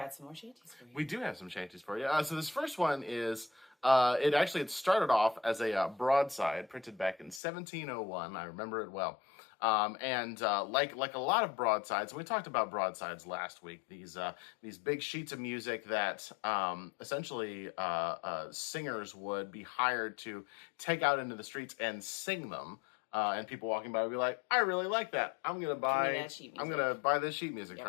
some more shanties for you. We do have some shanties for you. So this first one is, it started off as a broadside printed back in 1701. I remember it well. Like a lot of broadsides, and we talked about broadsides last week, these big sheets of music that essentially singers would be hired to take out into the streets and sing them. And people walking by would be like, "I really like that. I'm gonna buy this sheet music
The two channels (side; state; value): right; drops out; at 7.4 s